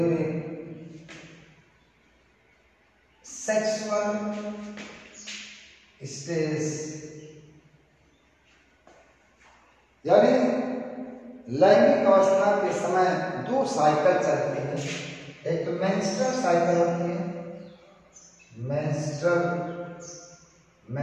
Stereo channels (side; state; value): both; identical; correlation 1.00